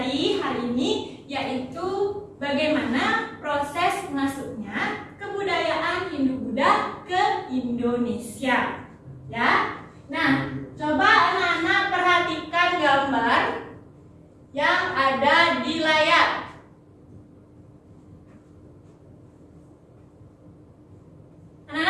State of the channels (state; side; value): identical; both; correlation 1.00